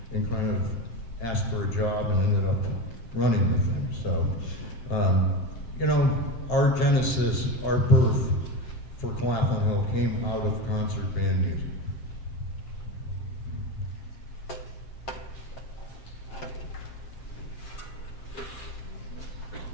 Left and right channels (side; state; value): right; late; 7.6 ms